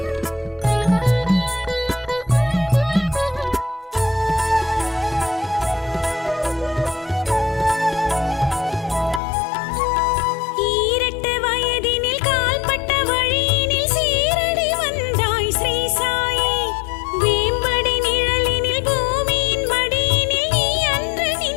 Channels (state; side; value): drops out; right; at 9.2 s